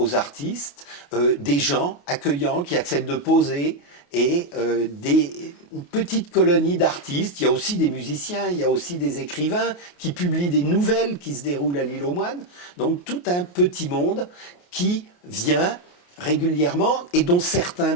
artistes, des gens accueillants qui acceptent de poser et une petite colonie d'artistes. Il y a aussi des musiciens, il y a aussi des écrivains qui publient des nouvelles qui se déroulent à l'île aux Moines. Donc tout un petit monde qui vient régulièrement, et dont certains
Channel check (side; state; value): right; late; 28 ms